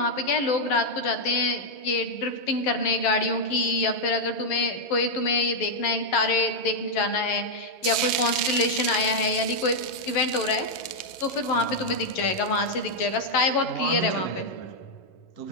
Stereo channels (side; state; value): right; late; 11 ms